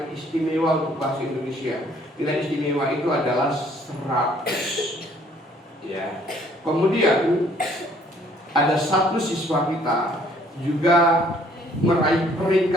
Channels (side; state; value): both; normal; correlation 0.61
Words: istimewa untuk bahasa Indonesia. Nilai istimewa itu adalah 100. Ya. Kemudian ada satu siswa kita juga meraih